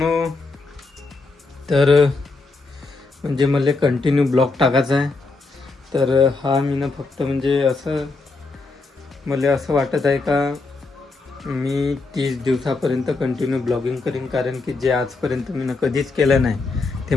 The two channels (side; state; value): right; quieter; 3.7 dB